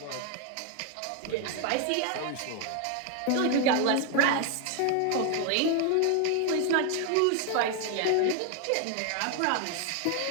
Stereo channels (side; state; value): both; different; correlation 0.01